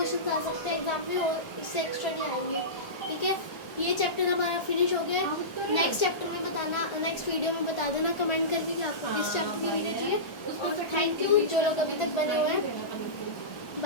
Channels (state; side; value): late; right; 1.4 ms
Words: आ सकते हैं एग्जाम में और इससे एक्स्ट्रा नहीं आएंगे, ठीक है। ये चैप्टर हमारा फिनिश हो गया है। नेक्स्ट चैप्टर में बताना, नेक्स्ट वीडियो में बता देना कमेंट करके कि आपको किस चैप्टर की वीडियो चाहिए। उसमें और तो थैंक यू जो लोग अभी तक बने हुए हैं।